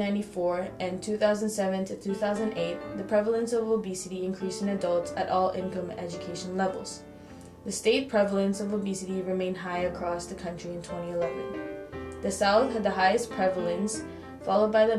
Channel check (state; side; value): identical; both; correlation 1.00